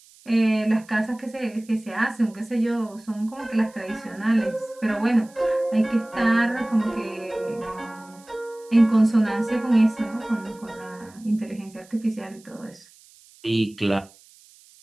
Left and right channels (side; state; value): right; noise; hiss, 26 dB below the sound